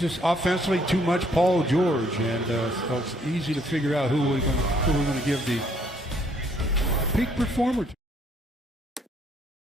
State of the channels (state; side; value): normal; both; correlation 0.66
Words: offensively too much Paul George, and so it's easy to figure out who we're going to give the peak performer to.